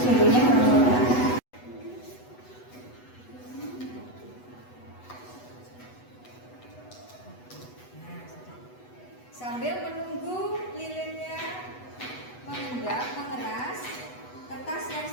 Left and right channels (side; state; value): right; late; 8.1 ms